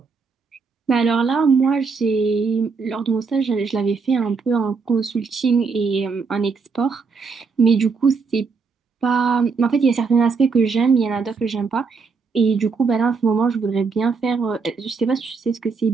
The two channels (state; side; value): quieter; left; 4.9 dB